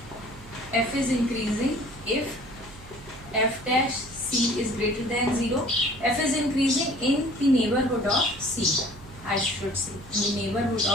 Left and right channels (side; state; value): right; noise; hum, 19 dB below the sound